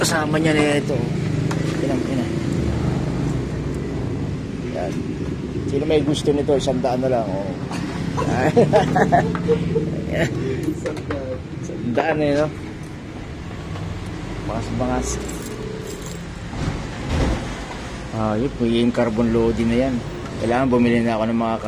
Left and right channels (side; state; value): both; identical; correlation 1.00